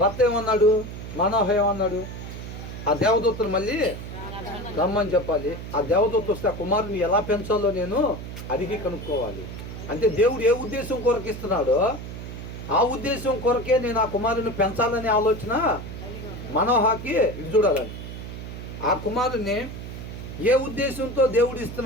భర్త ఏమన్నాడు? మానోహ ఏమన్నాడు? ఆ దేవదూతను మళ్ళీ రమ్మని చెప్పాలి. ఆ దేవదూత వస్తే ఆ కుమారుని ఎలా పెంచాలో నేను అడిగి కనుక్కోవాలి. అంటే దేవుడు ఏ ఉద్దేశం కొరకు ఇస్తున్నాడో ఆ ఉద్దేశం కొరకే నేను ఆ కుమారుని పెంచాలనే ఆలోచన మనోహకి ఇది చూడాలని. ఆ కుమారుని ఏ ఉద్దేశంతో దేవుడు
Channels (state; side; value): noise; right; hum, 9 dB below the sound